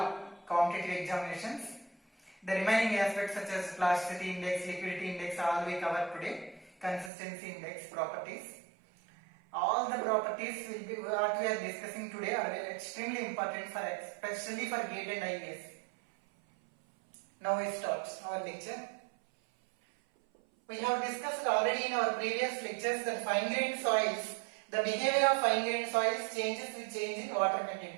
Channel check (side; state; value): left; drops out; at 7.1 s